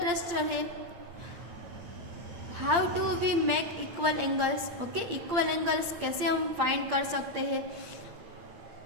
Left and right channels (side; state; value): left; late; 8.7 ms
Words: है how do we make equal angles. Okay, equal angles कैसे हम फाइंड कर सकते हैं।